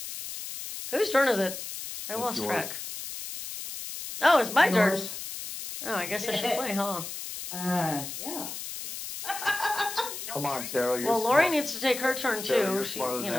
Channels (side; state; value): left; noise; hiss, 8 dB below the sound